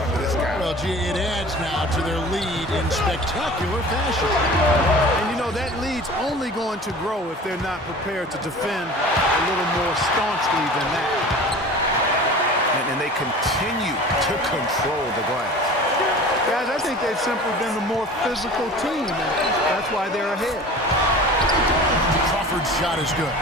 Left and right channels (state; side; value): normal; both; correlation 0.40